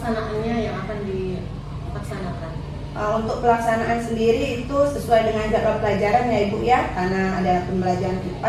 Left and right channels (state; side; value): identical; both; correlation 1.00